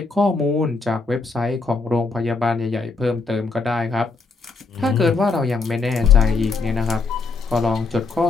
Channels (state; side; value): quieter; right; 4.0 dB